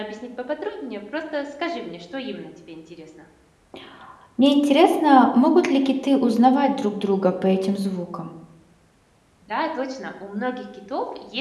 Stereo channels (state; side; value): identical; both; correlation 1.00